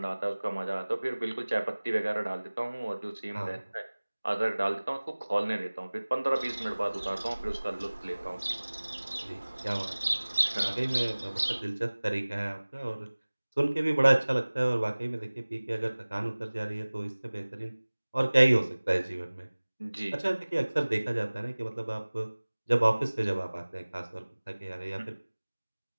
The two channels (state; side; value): inverted; both; correlation -1.00